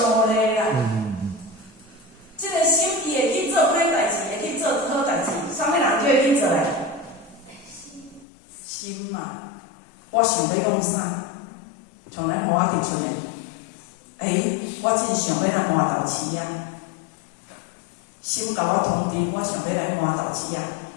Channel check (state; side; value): drops out; right; at 8.2 s